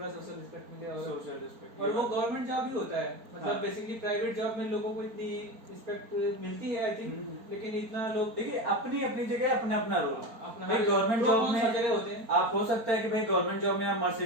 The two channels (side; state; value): left; late; 4.4 ms